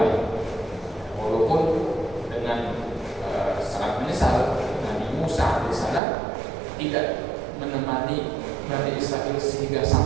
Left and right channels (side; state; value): left; drops out; at 6.0 s